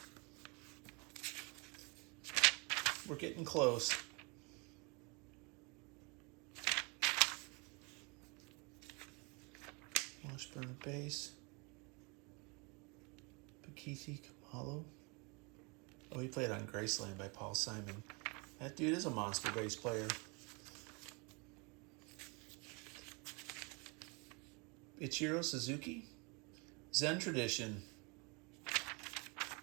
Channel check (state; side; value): quieter; left; 30.6 dB